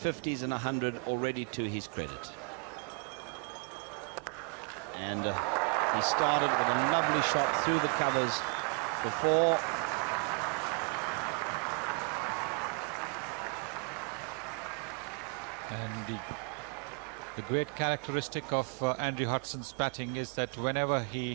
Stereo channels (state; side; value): quieter; left; 39.2 dB